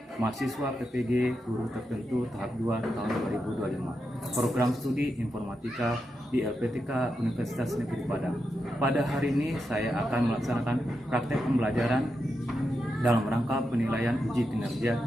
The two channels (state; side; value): normal; both; correlation 0.87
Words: Mahasiswa PPG Guru Tertentu tahap 2 tahun 2025. Program studi Informatika di LPTK Universitas Negeri Padang. Pada hari ini saya akan melaksanakan praktek pembelajaran dalam rangka penilaian uji kinerja